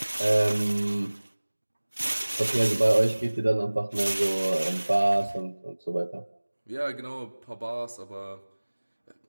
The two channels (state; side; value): inverted; both; correlation -1.00